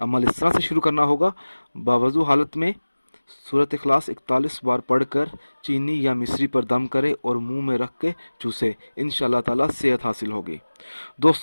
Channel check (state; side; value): inverted; both; correlation -1.00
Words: इस तरह से शुरू करना होगा, बावजू हालत में सूरत इखलास 41 बार पढ़कर चीनी या मिश्री पर दम करे और मुंह में रख के चूसे। इंशाअल्लाह ताला सेहत हासिल होगी।